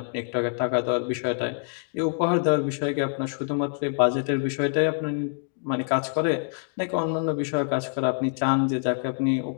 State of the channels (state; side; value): silent; right; 61 dB below the other